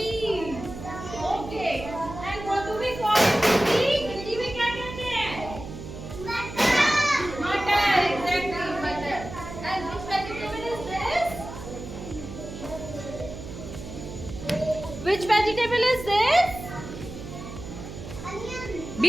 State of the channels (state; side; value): noise; right; hum, 11 dB below the sound